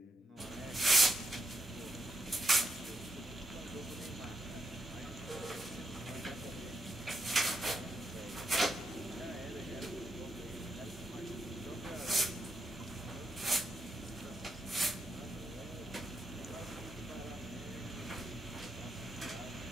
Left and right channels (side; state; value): both; normal; correlation 0.80